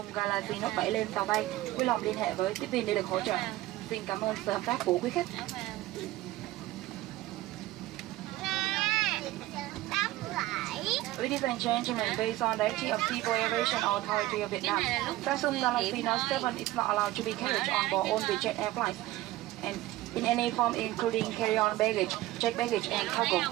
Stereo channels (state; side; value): quieter; left; 16.5 dB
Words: Galaxy Note 7 lên tàu bay, vui lòng liên hệ với tiếp viên để được hỗ trợ. Xin cảm ơn sự hợp tác của quý khách. Ladies and gentlemen, based on the directive of Civil Aviation Authority of Vietnam, Samsung Galaxy Note 7 is not allowed to be carried on board all Vietjet airlines, and in any form including carry-on baggage, checked baggage, and cargo.